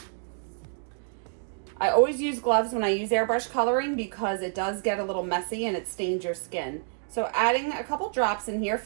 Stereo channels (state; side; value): silent; left; digital silence